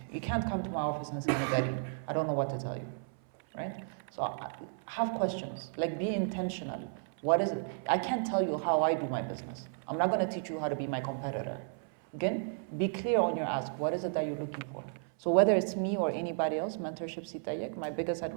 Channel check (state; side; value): silent; left; 56 dB below the other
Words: You can't come to my office and say, Nagari, I don't know what to tell you, right? So have questions, like be intentional. What is it? I can't tell you how I do my business. I'm not going to teach you how to be my competitor. Again, be clear on your ask. What is it that you're looking for? So whether it's me or anybody else, mentorship ሲጠየቅ, my biggest